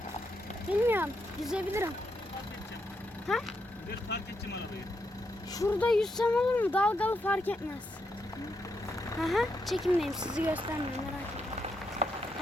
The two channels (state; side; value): normal; both; correlation 0.81